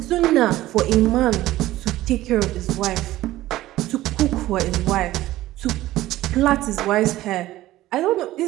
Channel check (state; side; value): quieter; left; 15.8 dB